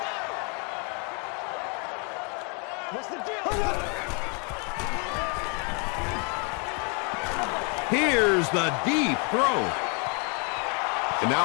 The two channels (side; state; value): right; quieter; 35.6 dB